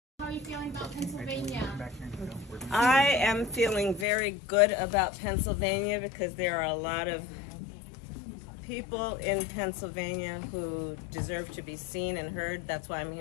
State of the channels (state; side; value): drops out; right; at 4.0 s